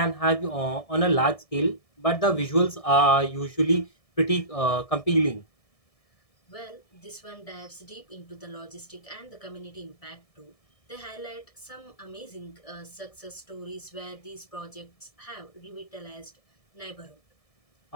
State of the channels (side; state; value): right; late; 1.7 ms